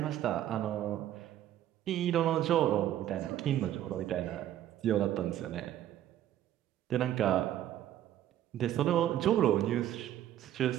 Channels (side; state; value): left; quieter; 12.0 dB